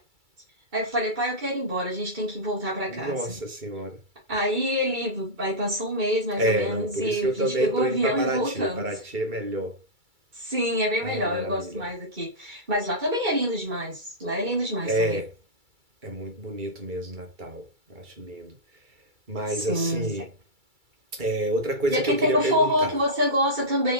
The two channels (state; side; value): late; left; 2.3 ms